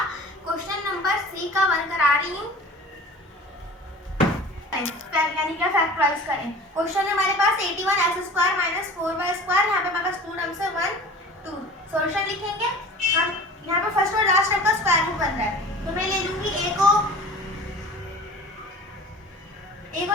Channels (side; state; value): both; normal; correlation 0.41